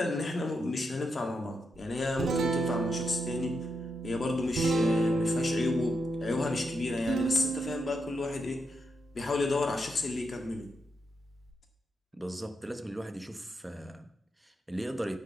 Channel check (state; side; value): normal; both; correlation 0.83